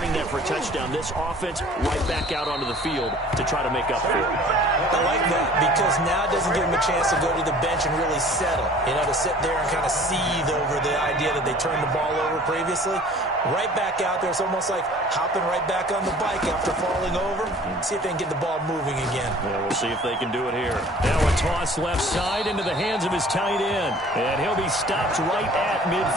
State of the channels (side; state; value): both; normal; correlation 0.49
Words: that for a touchdown. This offense right back out onto the field to try to make up for it. I like that because now it doesn't give them a chance to go to the bench and really settle. You know, to sit there and kind of seethe over the idea that they turned the ball over previously. Right back out there. It's almost like hopping right back on the bike after falling over. See if they can get the ball moving again. Yeah, we'll see if they can do it here. Now a toss left side into the hands of his tight end. And he'll be stopped right at